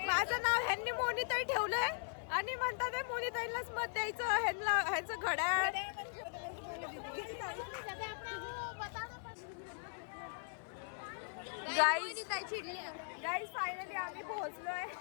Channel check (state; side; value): silent; right; digital silence